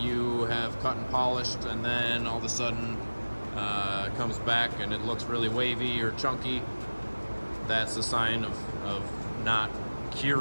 have cut and polished and then all of a sudden it comes back and it looks really wavy or chunky, that's a sign of not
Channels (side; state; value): both; inverted; correlation -1.00